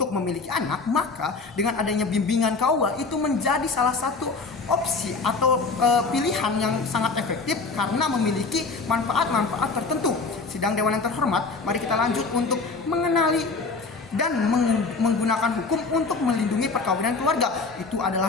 memiliki anak, maka dengan adanya bimbingan KUA itu menjadi salah satu opsi atau pilihan yang sangat efektif karena memiliki manfaat-manfaat tertentu. Sidang Dewan yang terhormat, mari kita lanjut untuk mengenali dan menggunakan hukum untuk melindungi perkawinan keluarga. Itu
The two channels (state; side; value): quieter; right; 4.2 dB